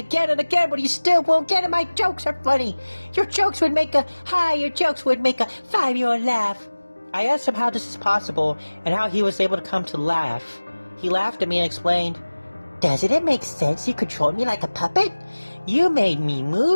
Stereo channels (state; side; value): inverted; both; correlation -1.00